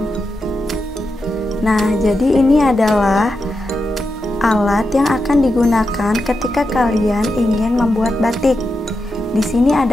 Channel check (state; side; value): normal; both; correlation 0.88